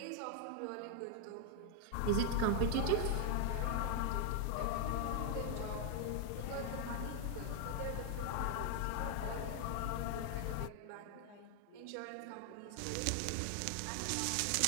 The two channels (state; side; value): different; both; correlation 0.00